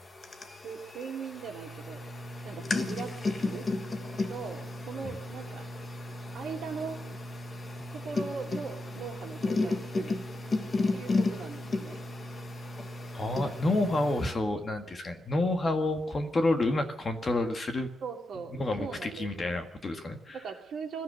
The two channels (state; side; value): normal; both; correlation 0.86